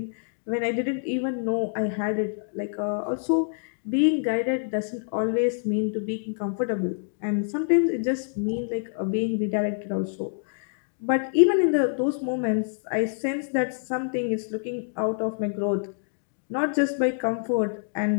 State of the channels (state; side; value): silent; right; digital silence